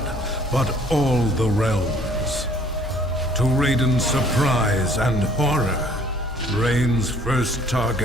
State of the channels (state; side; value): normal; both; correlation 0.57